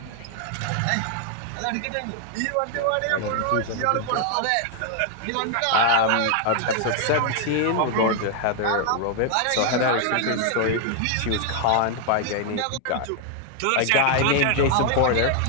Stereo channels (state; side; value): different; both; correlation 0.00